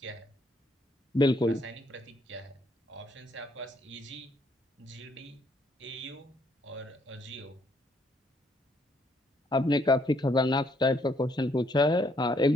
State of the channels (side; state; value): both; normal; correlation 0.69